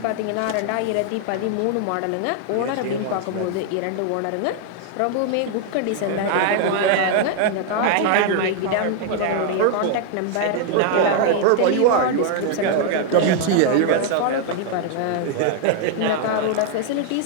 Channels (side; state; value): both; different; correlation 0.00